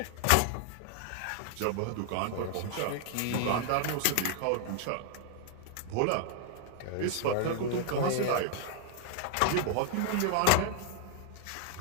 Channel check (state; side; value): different; both; correlation 0.00